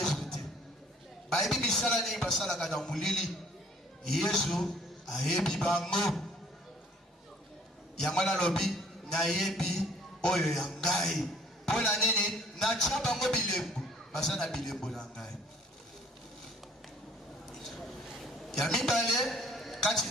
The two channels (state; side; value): normal; both; correlation 0.56